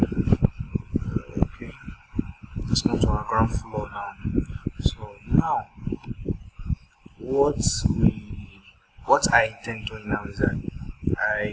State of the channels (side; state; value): both; identical; correlation 1.00